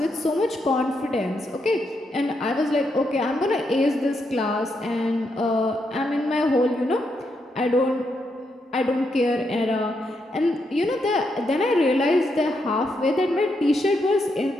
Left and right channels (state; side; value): normal; both; correlation 0.81